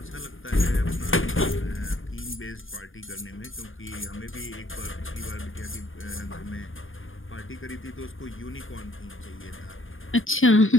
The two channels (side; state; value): right; late; 0.59 ms